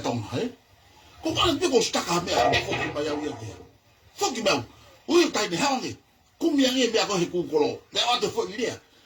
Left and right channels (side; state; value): both; identical; correlation 1.00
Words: tong ko ka pe ko sta ka me ko ko ba ya wi ki fo ki ba o tai me ha ngi ku mi ngi me ko he ku ko lo le o to fo ni